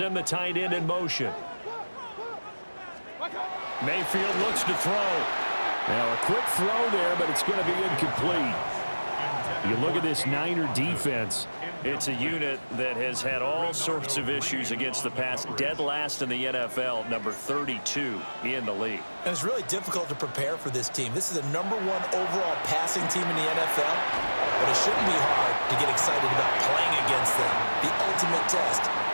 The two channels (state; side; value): inverted; both; correlation -1.00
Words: the tight end in motion. Mayfield looks to throw. Now a quick throw there, but it's going to be incomplete. You look at this Niner defense. It's a unit that has had all sorts of issues against the pass. Dead last in the NFL, number 32 in the league. And it's really difficult to prepare for this team. This is the #1 overall passing team in the NFL, but it shouldn't be hard to get excited about playing against them. The ultimate test